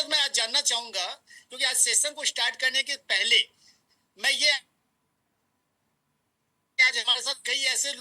तो मैं आज जानना चाहूंगा, क्योंकि आज सेशन को स्टार्ट करने के पहले मैं ये, आज हमारे साथ कई ऐसे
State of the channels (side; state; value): both; identical; correlation 1.00